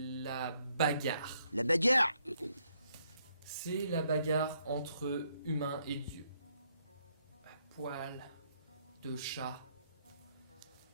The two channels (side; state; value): both; inverted; correlation -0.73